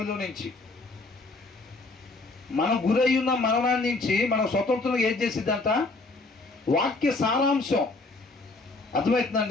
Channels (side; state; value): right; quieter; 3.3 dB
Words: నుంచి. మనం గురై ఉన్న మరణాన్ని నుంచి మనం స్వతంత్రంగా ఏం చేసిద్దంట? వాక్య సారాంశం.